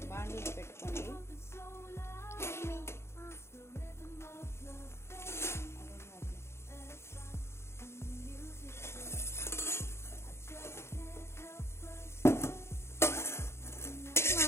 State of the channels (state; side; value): late; right; 0.13 ms